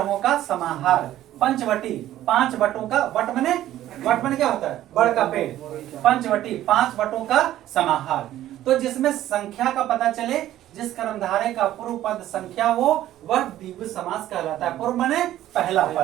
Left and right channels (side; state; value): left; quieter; 13.3 dB